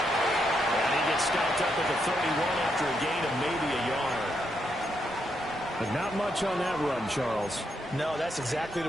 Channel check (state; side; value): normal; both; correlation 0.79